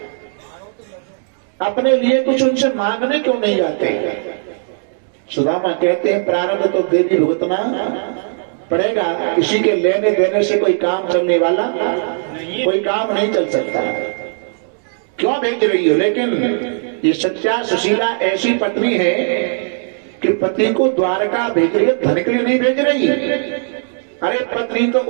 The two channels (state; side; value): silent; left; digital silence